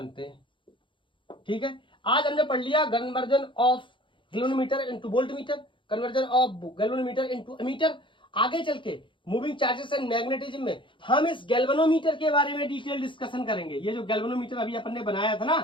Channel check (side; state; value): right; late; 0.24 ms